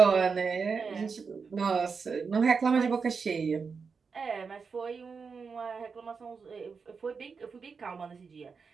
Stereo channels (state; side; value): quieter; left; 5.3 dB